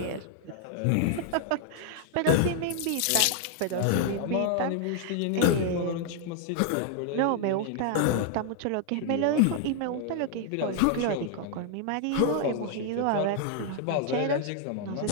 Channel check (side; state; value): both; different; correlation 0.00